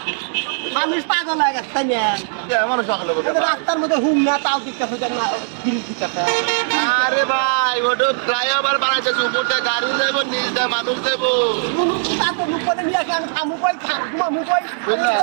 মানুষ পাগল হয়ে গেছে তাই না? আমার সকালে বলতে এই যে রাস্তার মধ্যে হুম না তাও দিকতেছে দেখ না ব্রিজ দিকতেছে। আরে ভাই ওটা ফ্লাইওভার বানাইতেছে উপর দিয়ে গাড়ি দেবো নিচ দিয়ে মানুষ দেবো তার তো মুখ করে নিয়ে আসে আমি খামু কই ঘুমামু কই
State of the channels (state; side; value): silent; left; 60 dB below the other